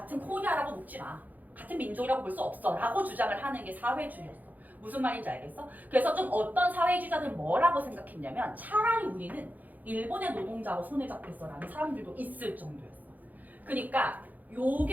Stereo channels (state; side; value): late; left; 0.082 ms